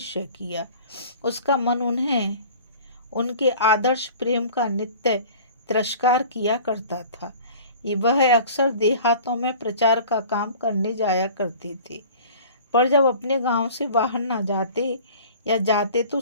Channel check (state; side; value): inverted; both; correlation -0.44